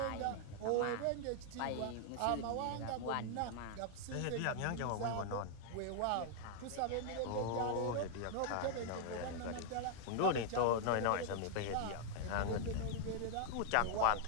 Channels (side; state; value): both; different; correlation 0.00